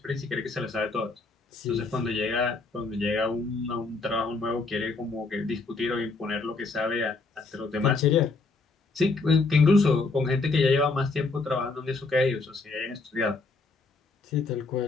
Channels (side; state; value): right; quieter; 3.8 dB